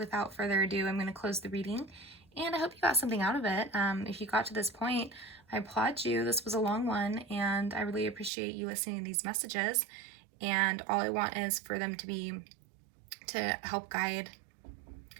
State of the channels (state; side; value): drops out; left; at 8.3 s